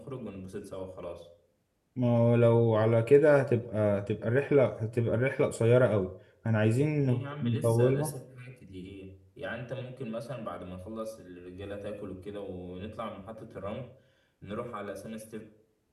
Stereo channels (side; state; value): both; identical; correlation 1.00